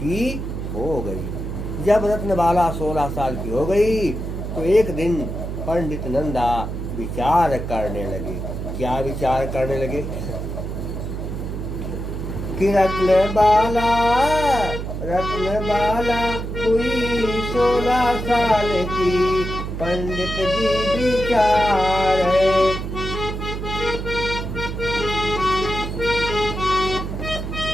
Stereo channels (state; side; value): noise; right; hum, 5 dB below the sound